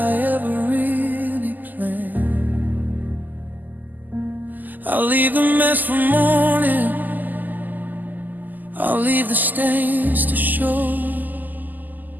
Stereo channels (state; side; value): late; left; 0.085 ms